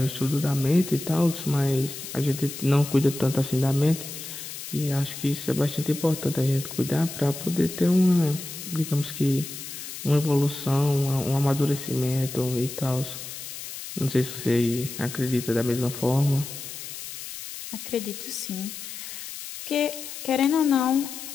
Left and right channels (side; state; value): left; noise; hiss, 10 dB below the sound